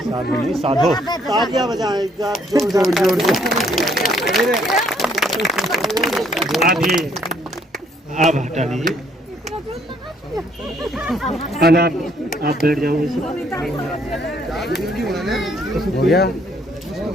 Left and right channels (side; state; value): both; normal; correlation 0.66